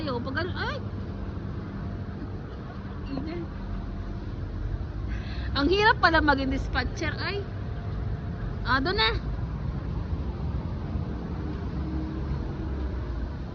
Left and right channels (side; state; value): both; identical; correlation 1.00